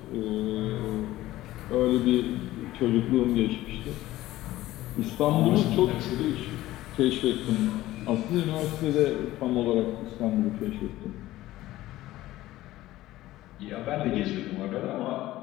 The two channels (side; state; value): right; quieter; 16.0 dB